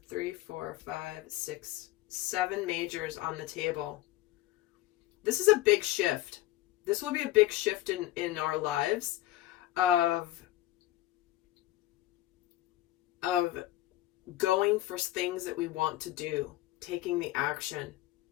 3, 4, 5, 6, 7 majors on the table. This is a big shift. This will be a big shift in our lives of going for things that we want to do, taking the action.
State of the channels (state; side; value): quieter; right; 16.0 dB